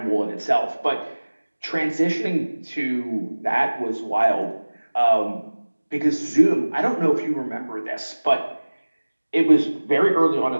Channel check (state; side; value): inverted; both; correlation -1.00